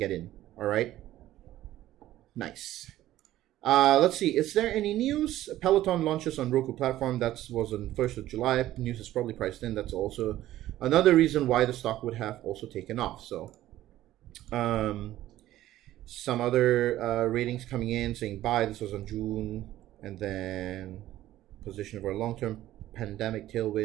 in. All right. Nice. Let's see. Is there any news? Peloton launches on Roku platform. That was on 1st of July. News is probably priced in. That's also another reason why the stock would have also taken off. So, some other ratings coming in saying buy. This was on June, and then position for a long-term pandemic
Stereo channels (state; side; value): quieter; left; 14.2 dB